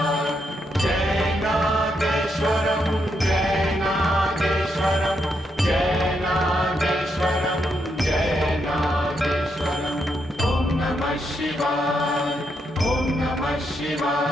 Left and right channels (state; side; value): normal; both; correlation 0.80